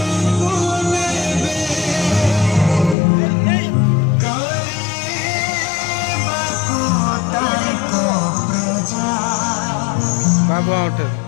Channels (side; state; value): right; drops out; at 3.0 s